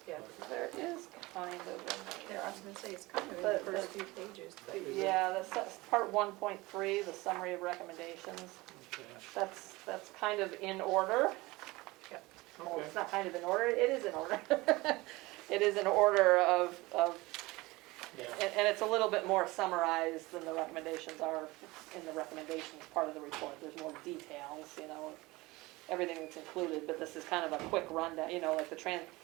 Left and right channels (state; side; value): quieter; left; 21.4 dB